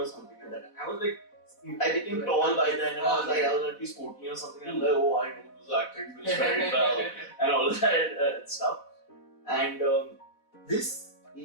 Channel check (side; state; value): right; late; 4.1 ms